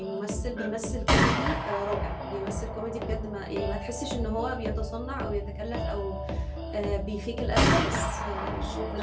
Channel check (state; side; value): identical; both; correlation 1.00